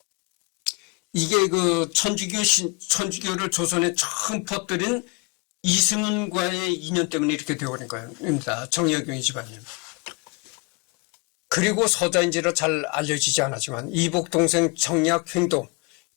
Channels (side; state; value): right; quieter; 29.6 dB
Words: 이게 천주교를 조선에 처음 퍼뜨린 이승훈과의 인연 때문에 이렇게 되어버린 겁니다. 정약용 집안이. 그리고 서자인지라 잘 알려지지 않았지만 이복 동생 정약횡도